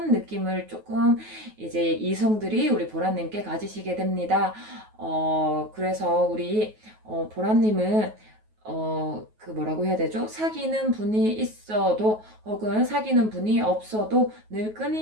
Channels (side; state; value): left; late; 9.3 ms